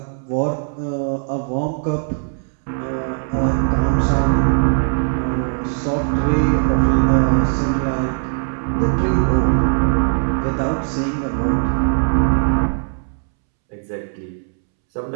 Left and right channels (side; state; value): left; silent; 66 dB below the other